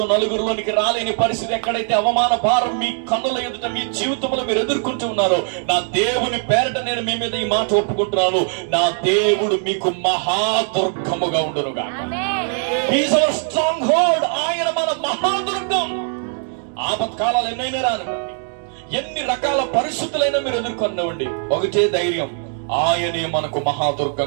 నలుగురిలోనికి రాలేని పరిస్థితి, ఎక్కడైతే అవమాన భారం మీ కన్నుల ఎదుట మీ జీవితంలో మీరు ఎదుర్కొంటూ ఉన్నారో, నా దేవుని పేరట నేను మీ మీద ఈ మాట ఒప్పుకుంటున్నాను, నా దేవుడు మీకు మహాదుర్గముగా ఉండును గాక. He's hour strong hold. ఆయన మన మహాదుర్గం. ఆపత్కాలాలు ఎన్నైనా రానివ్వండి, ఎన్ని రకాల పరిస్థితులైనా మీరు ఎదుర్కొనివ్వండి, ఒకటే ధైర్యం, ఆయనే మనకు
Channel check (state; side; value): silent; left; 58 dB below the other